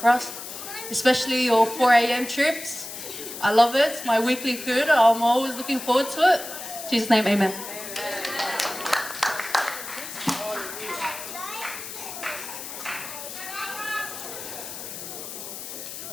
for us, especially your 4 a.m. trips. I love it. It's my weekly food. I'm always looking forward to it. In Jesus' name, amen.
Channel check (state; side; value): noise; left; hiss, 10 dB below the sound